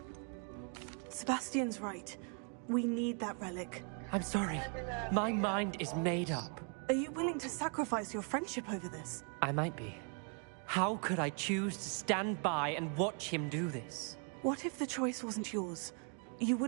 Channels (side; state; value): left; quieter; 39.1 dB